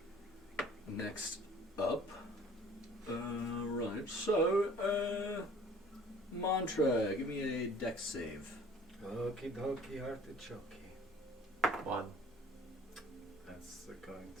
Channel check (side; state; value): both; normal; correlation 0.50